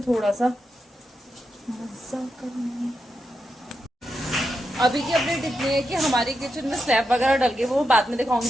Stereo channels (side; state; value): both; normal; correlation 0.86